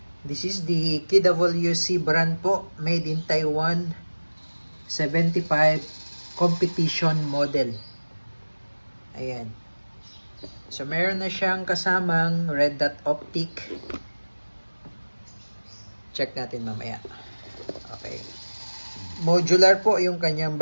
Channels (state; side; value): inverted; both; correlation -1.00